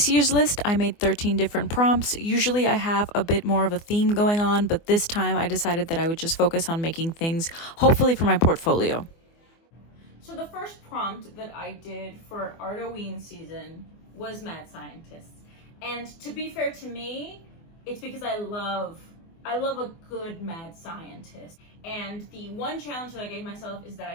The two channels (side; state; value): right; late; 24 ms